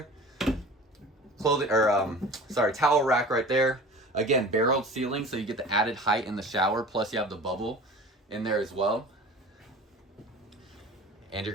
Towel rack right there. Again, barreled ceiling, so you get the added height in the shower. Plus, you have the bubble in there as well. And you're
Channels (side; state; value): both; normal; correlation 0.40